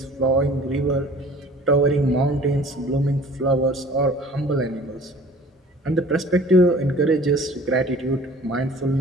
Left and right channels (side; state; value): both; normal; correlation 0.48